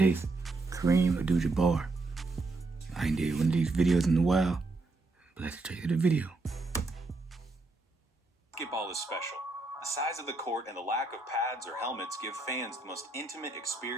Kareem Abdul-Jabbar. I ain't did one of these videos in a while, but let's check out the video. Basketball is special. The size of the court and the lack of pads or helmets give fans the most intimate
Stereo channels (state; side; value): quieter; left; 3.3 dB